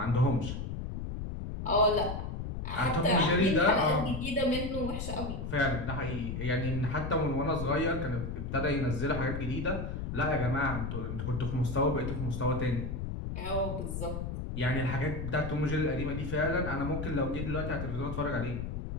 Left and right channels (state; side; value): noise; left; rumble, 4 dB below the sound